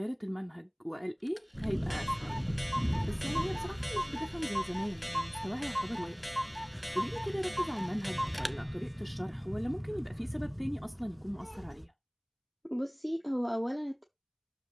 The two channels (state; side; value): identical; both; correlation 1.00